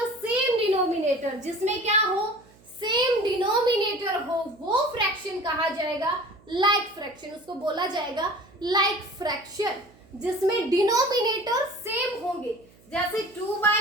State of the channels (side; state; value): right; noise; hum, 28 dB below the sound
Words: same denominator, जिसमें क्या हो, सेम डिनोमिनेटर हो, वो फ्रैक्शन कहा जाएगा लाइक फ्रैक्शन, उसको बोला जाएगा लाइक फ्रैक्शन, जिसमें डिनोमिनेटर सेम होंगे, जैसे